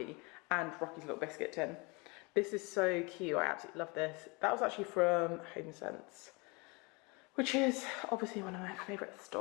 and Rocky's little biscuit tin. This is so cute, I absolutely love this. That was actually from HomeSense, which is obviously one of my favourite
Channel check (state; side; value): quieter; right; 28.4 dB